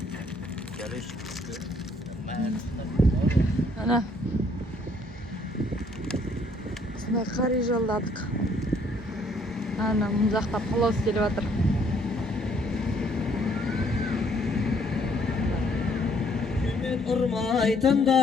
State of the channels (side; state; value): both; normal; correlation 0.65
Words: Ана. Осындай қар үй жалдадық. Ана, мұн жақта палау істеліп жатыр.